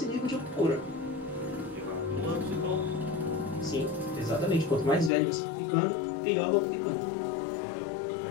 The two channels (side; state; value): right; drops out; at 5.1 s